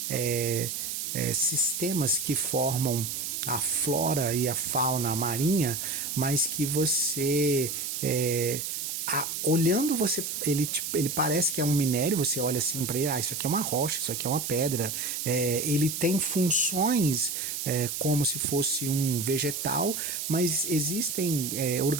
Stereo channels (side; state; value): right; noise; hiss, 4 dB below the sound